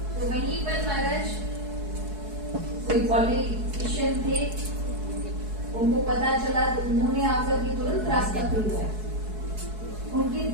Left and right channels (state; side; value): late; left; 4.7 ms